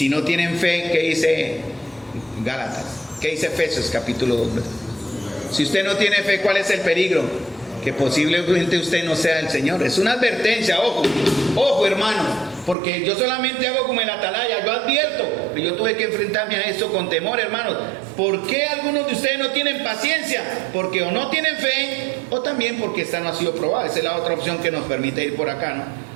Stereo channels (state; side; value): drops out; left; at 12.8 s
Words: no tienen fe, ¿qué dice Gálatas? ¿Qué dice Efesios capítulo 2? Si usted no tiene fe, ¿cuál es el peligro? Que posiblemente usted no sea el Señor. Es una advertencia, ojo hermano, porque yo solamente hago como el atalaya, yo advierto, que yo tuve que enfrentarme a esto con temor, hermanos. ¿Por qué algunos de ustedes no tienen paciencia? Porque o no tienen fe, o también porque esta no ha sido probada. Esa es la otra opción que nos permite ir por acá, ¿no?